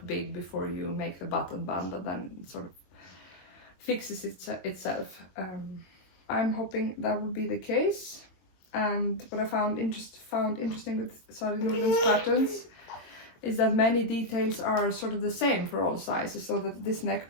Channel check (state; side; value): late; right; 22 ms